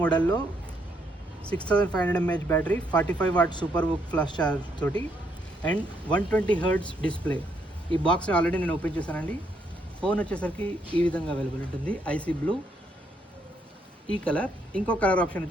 6500 mAh battery, 45 what super book flash charge తోటి and 120 Hz display. ఈ బాక్స్ని ఆల్రెడీ నేను ఓపెన్ చేశానండి. ఫోన్ వచ్చేసరికి ఈ విధంగా అవైలబుల్ ఉంటుంది. ఐసీ బ్లూ ఈ కలర్. ఇంకో కలర్ ఆప్షన్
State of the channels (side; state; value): both; normal; correlation 0.74